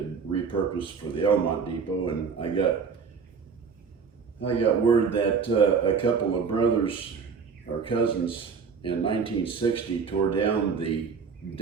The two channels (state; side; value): quieter; left; 5.8 dB